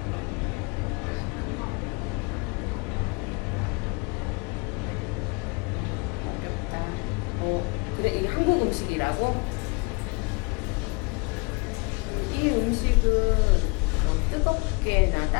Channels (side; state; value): right; quieter; 30.5 dB